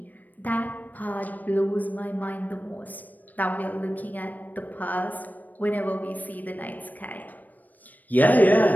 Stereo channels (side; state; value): right; late; 0.084 ms